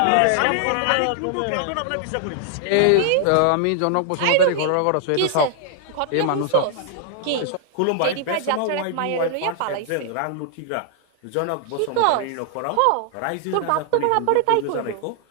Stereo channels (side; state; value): both; different; correlation 0.00